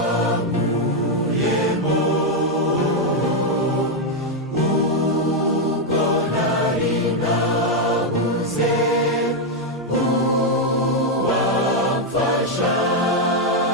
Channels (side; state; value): both; normal; correlation 0.01